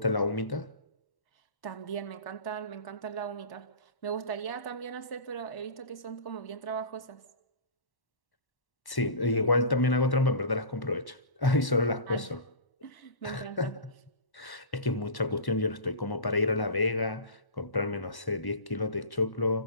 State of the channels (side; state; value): right; late; 1.1 ms